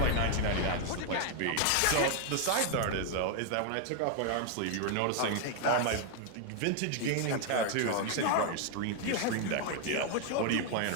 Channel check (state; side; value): different; both; correlation 0.00